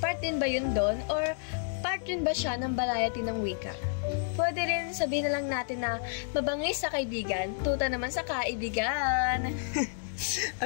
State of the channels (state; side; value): silent; right; digital silence